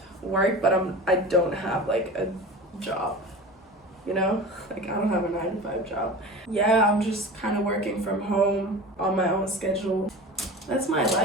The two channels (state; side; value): normal; both; correlation 0.33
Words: work, but I don't have like a job, you know? Like, I don't have a 9-to-5 job. Yeah, I'm just kind of working from home on my own schedule. That's my